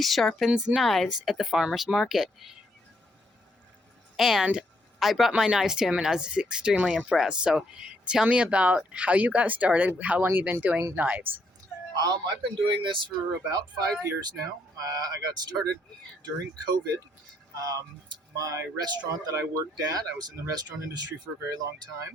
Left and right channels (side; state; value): both; normal; correlation 0.73